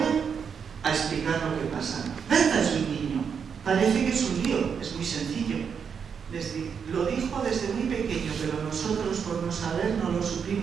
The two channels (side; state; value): left; quieter; 6.8 dB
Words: a explicar lo que pasa. Berta es un niño, parece que es un lío, es muy sencillo. Lo dijo desde muy pequeño, pero nosotros por no saber no lo